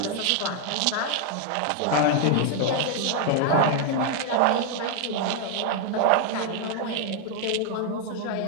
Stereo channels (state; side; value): different; both; correlation 0.00